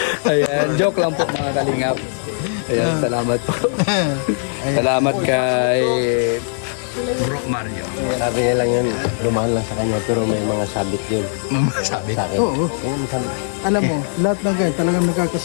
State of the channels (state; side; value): silent; right; digital silence